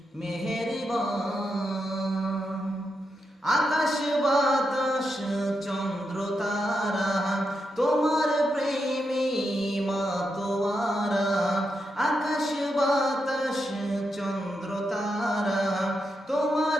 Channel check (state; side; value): normal; both; correlation 0.85